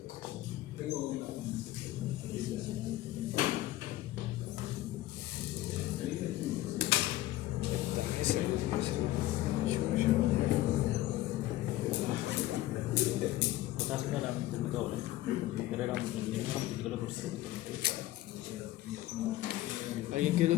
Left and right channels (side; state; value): right; quieter; 15.7 dB